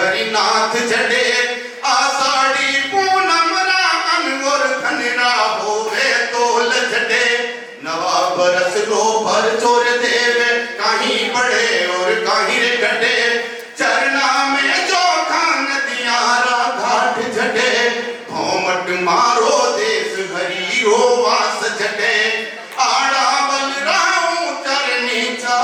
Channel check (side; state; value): both; identical; correlation 1.00